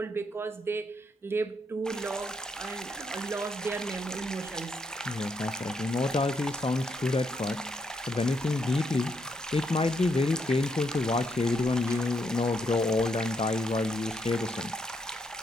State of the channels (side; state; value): both; normal; correlation 0.77